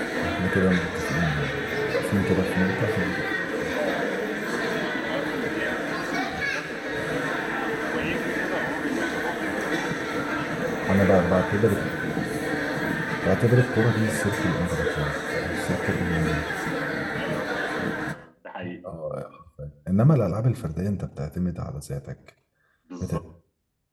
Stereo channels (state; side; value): identical; both; correlation 1.00